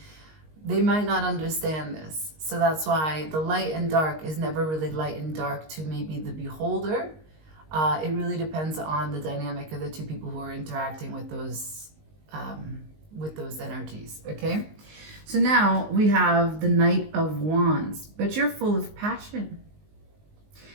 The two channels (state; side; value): late; left; 19 ms